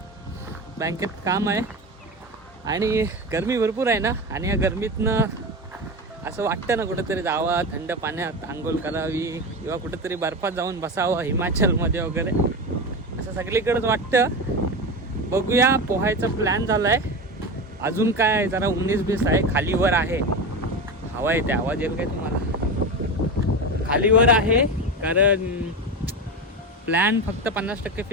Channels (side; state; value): both; normal; correlation 0.22